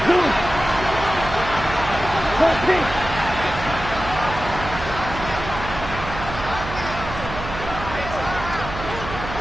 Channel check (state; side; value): noise; right; hum, 9 dB below the sound